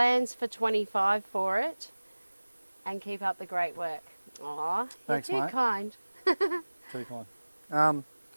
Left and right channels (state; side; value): inverted; both; correlation -1.00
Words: for 25 for it, and keep up the great work. Aw, thanks, you're too mate. kind. Too kind.